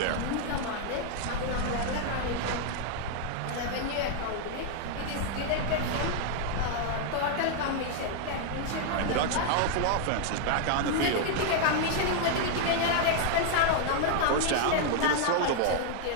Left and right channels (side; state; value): both; different; correlation 0.00